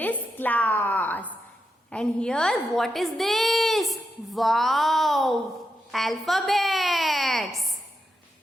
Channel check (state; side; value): normal; both; correlation 0.86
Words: class. And here what is this? Wow! Alphabets.